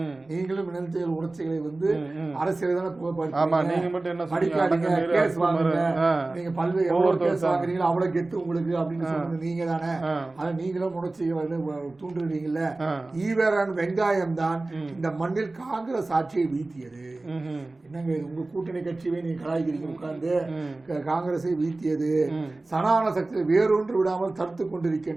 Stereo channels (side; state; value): left; quieter; 3.1 dB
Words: நீங்களும் இளைஞர்கள் உணர்ச்சிகளை வந்து அரசியல் தானே படிக்காதீங்க, கேஸ் வாங்குங்க, நீங்க பல்வேறு எவ்வளவு கேஸ் வாங்குறீங்களோ அவ்வளவு கெத்து உங்களுக்கு அப்படின்னு சொன்னது நீங்க தானே, ஆனா நீங்களும் உணர்ச்சிகளை வந்து தூண்டுறீங்கல்ல. ஈவேரான் வெங்காயம் தான் இந்த மண்ணில் காங்கிரஸ் ஆட்சியை வீழ்த்தியது. என்னங்க உங்க கூட்டணி கட்சியை நீங்க கலாய்க்கிறீங்க உட்கார்ந்து, காங்கிரஸை வீழ்த்தியது, சனாதன சக்தியை வேறொன்று விடாமல் தடுத்து